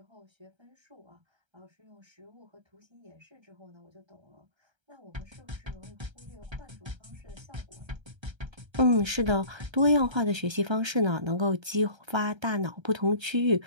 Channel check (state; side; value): late; left; 1.3 ms